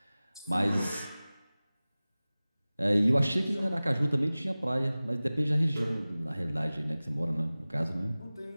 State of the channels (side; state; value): both; inverted; correlation -0.98